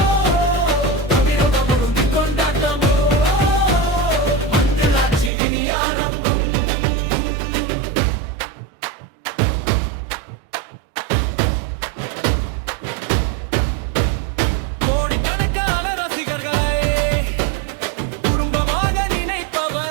தமிழகம் முழுங்கி கொண்டாட்டம், மஞ்சளாட்சி இனி ஆரம்பம். கோடிக்கணக்கான ரசிகர்களை குடும்பமாக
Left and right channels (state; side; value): drops out; left; at 5.3 s